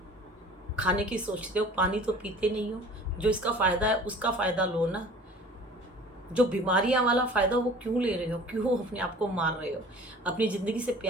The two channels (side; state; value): both; normal; correlation 0.46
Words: खाने की सोचते हो, पानी तो पीते नहीं हो। जो इसका फ़ायदा है उसका फ़ायदा लो ना। जो बीमारियां वाला फ़ायदा वो क्यों ले रहे हो, क्यों अपने आप को मार रहे हो? अपनी ज़िंदगी से